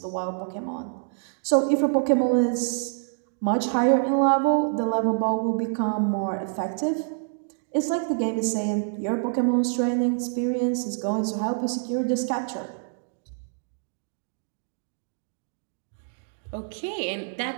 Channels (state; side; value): silent; left; digital silence